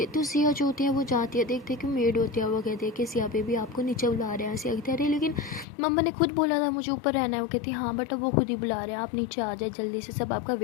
तो सिया जो होती है वो जाती है, देखते कि मेड होती है, वो कहती है कि सिया बेबी आपको नीचे बुला रहे हैं। सिया कहती है अरे लेकिन मम्मा ने खुद बोला था मुझे ऊपर रहना है। वो कहती हाँ बट अब वो खुद ही बुला रहे हैं, आप नीचे आ जाए जल्दी से, सब आपका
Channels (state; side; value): drops out; right; at 5.7 s